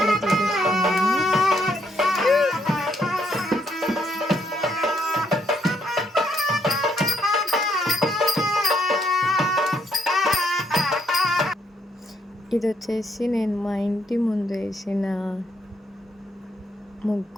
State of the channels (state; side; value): normal; both; correlation 0.74